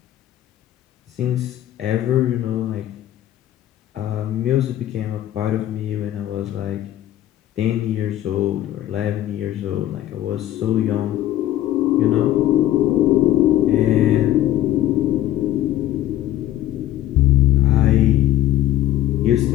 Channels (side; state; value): right; quieter; 13.5 dB